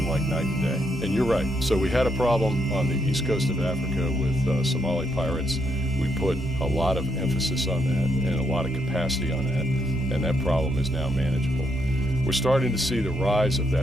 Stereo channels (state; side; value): normal; both; correlation 0.76